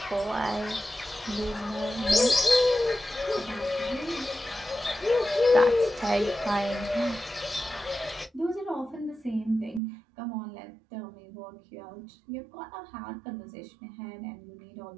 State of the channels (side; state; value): left; drops out; at 9.8 s